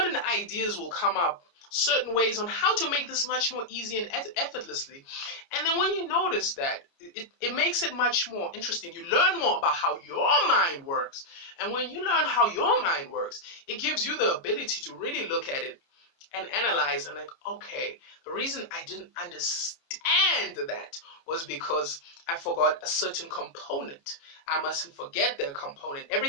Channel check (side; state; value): right; late; 29 ms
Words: ideas will come up, certain ways on how to make this much more easy and effortlessly. And then when you notice that, it makes it much more interesting. You learn more about how your mind works. And when you learn how your mind works, it gives you the ability to really look at it and analyze and okay, the reason I didn't understand that was because I forgot a certain component. I mustn't forget that component.